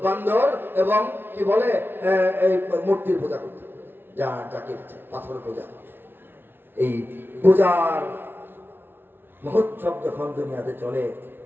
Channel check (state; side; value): late; left; 0.10 ms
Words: বান্দর এবং কি বলে এই মূর্তির পূজা করত, যাকে পাথর পূজা। এই পূজার মহোৎসব যখন দুনিয়াতে চলে,